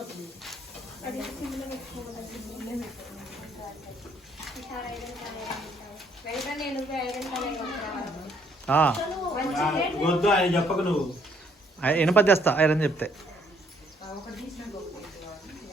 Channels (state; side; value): normal; both; correlation 0.66